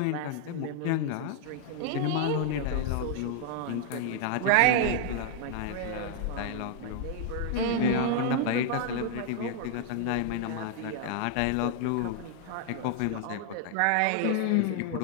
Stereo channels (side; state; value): both; different; correlation 0.00